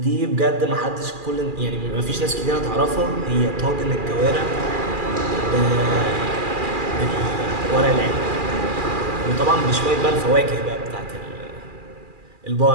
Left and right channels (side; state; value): left; late; 2.4 ms